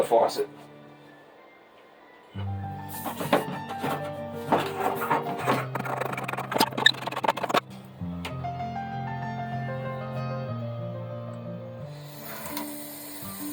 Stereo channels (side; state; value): both; identical; correlation 1.00